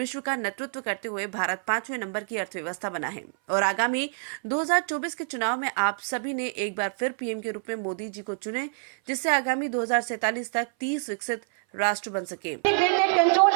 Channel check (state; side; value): silent; left; 59 dB below the other